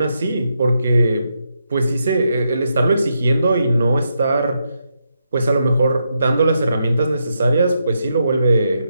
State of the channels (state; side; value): inverted; both; correlation -0.82